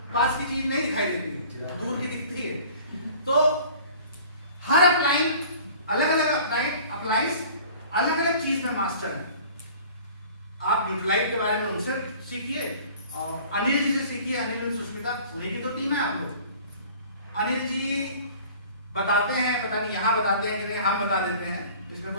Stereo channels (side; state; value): both; inverted; correlation -0.47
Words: पास की चीज नहीं दिखाई देती, दूर की दिखती है। तो हर अपलाइन अलग अलग अप्लाइंस अलग अलग चीज में मास्टर है। आप न्यूट्राइट के बारे में उनसे सीखिए, और अनिल जी से सीखिए। अनिल और सुष्मिता, उन्हीं की तो टीम है आपको। अनिल जी बताते हैं, पता नहीं यहाँ बताते हैं कि नहीं, हम बता देते हैं, इसमें